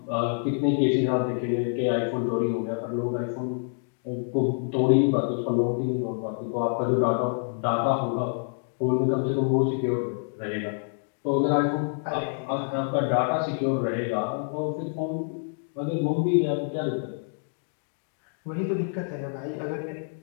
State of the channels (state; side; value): silent; right; digital silence